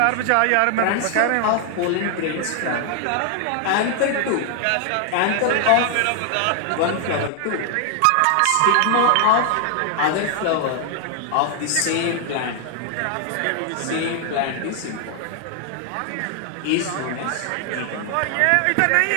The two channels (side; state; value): both; different; correlation 0.00